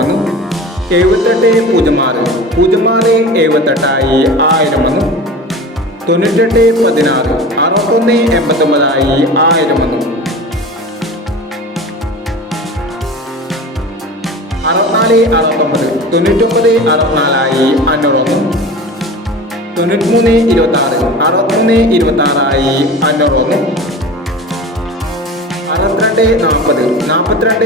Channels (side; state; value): both; normal; correlation 0.34